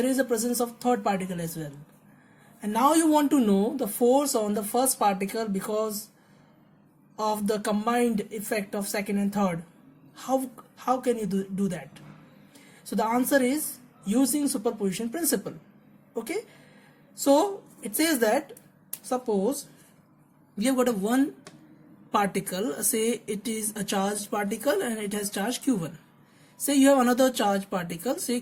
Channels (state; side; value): identical; both; correlation 1.00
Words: is a presence of third particle as well. And now you want to know the force on the first particle because of the combined effect of second and third. How can you do that? So the answer is using superposition principle. Okay, so it says that suppose we have got a one particle, say it is a charged particle and it has charge q1. Say you have another charged particle, say